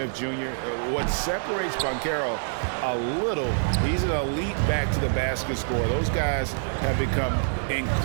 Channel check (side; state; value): left; silent; digital silence